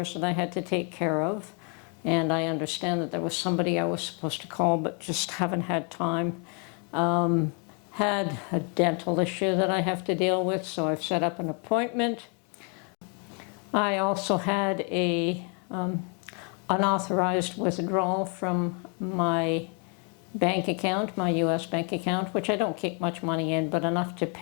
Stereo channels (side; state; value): right; quieter; 36.8 dB